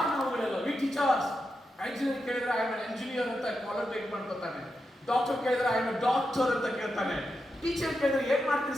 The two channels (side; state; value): both; normal; correlation 0.87